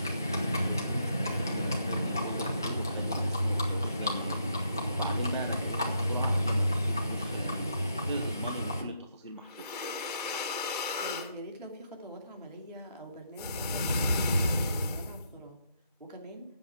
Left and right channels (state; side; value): inverted; both; correlation -0.77